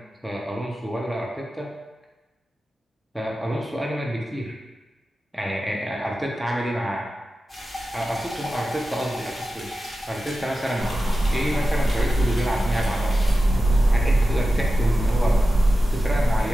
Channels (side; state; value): both; normal; correlation 0.93